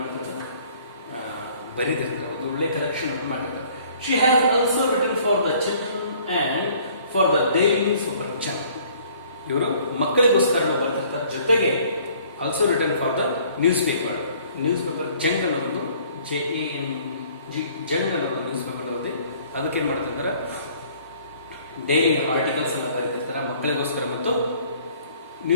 ಮಾಡ್ತಾರೆ, ಬರೀದಿರ್ತಾರೆ. ಒಂದು ಒಳ್ಳೆ ಕಲೆಕ್ಷನ್ ಅನ್ನು ಮಾಡಿರ್ತಾರೆ. She has also written for the children and for the daily super channel. ಇವರು ಮಕ್ಕಳಿಗೋಸ್ಕರ ಬರ್ತಿರ್ತಾರೆ. ಜೊತೆಗೆ also written for the newspaper Jang ಅನ್ನೋದು JANG ಜಂಗ್ ಅನ್ನೋದು ನ್ಯೂಸ್ ಪೇಪರ್ ಅನ್ನೋದು. ಅದಕ್ಕೆ ಏನು ಮಾಡ್ತಿರ್ತಾರೆ, ಡೈಲಿ ಆರ್ಟಿಕಲ್ಸ್ ಅನ್ನ ಬರೀತಿರ್ತಾರೆ ಮಕ್ಕಳಿಗೋಸ್ಕರ ಮತ್ತು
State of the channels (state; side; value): inverted; both; correlation -0.56